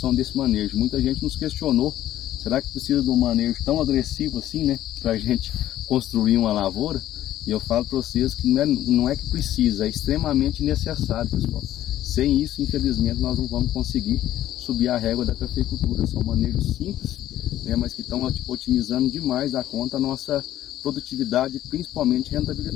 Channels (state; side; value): quieter; right; 13.1 dB